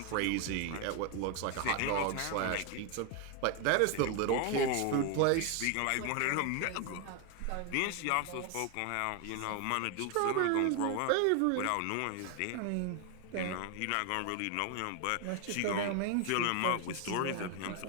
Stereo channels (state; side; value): different; both; correlation 0.01